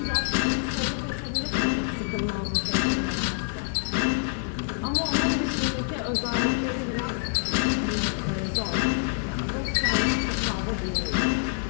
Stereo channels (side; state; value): right; silent; 60 dB below the other